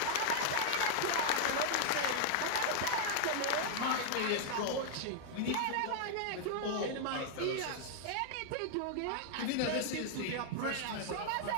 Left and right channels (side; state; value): both; different; correlation -0.01